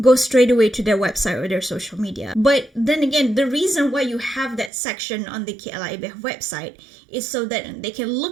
go straight away to their website or their social media. But then again, the reason why you have that section on the KLIBF website is so that they can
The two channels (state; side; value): drops out; left; at 4.7 s